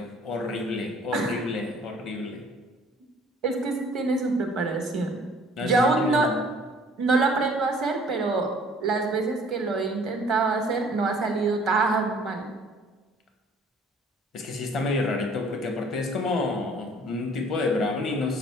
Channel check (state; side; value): normal; both; correlation 0.55